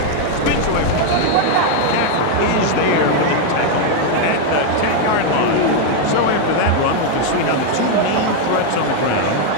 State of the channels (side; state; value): both; different; correlation 0.01